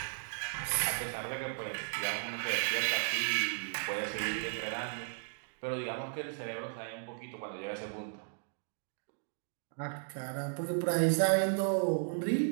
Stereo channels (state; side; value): silent; left; digital silence